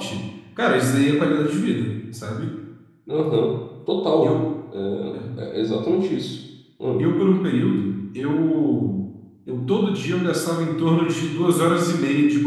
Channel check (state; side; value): identical; both; correlation 1.00